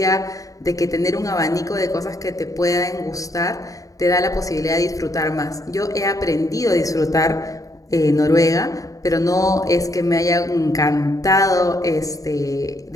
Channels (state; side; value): late; right; 0.16 ms